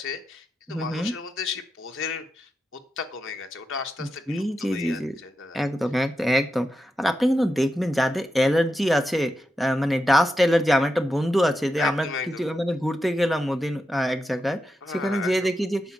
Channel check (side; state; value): both; normal; correlation 0.88